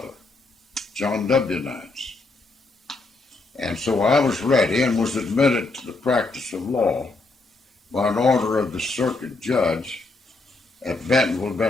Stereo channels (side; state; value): right; quieter; 3.4 dB